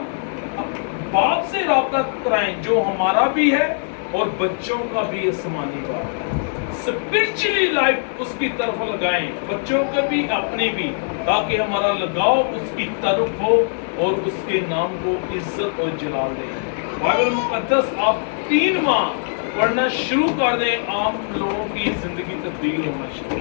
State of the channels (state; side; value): silent; right; 63 dB below the other